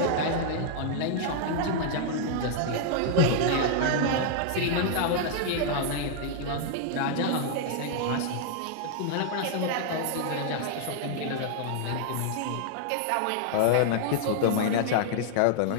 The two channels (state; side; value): different; both; correlation -0.01